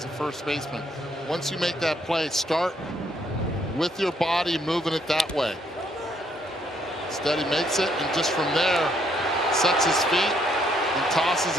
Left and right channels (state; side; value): normal; both; correlation 0.70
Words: a first baseman, once you make that play, start with your body moving it that way. Instead, he makes it, and just from there, sets his feet and tosses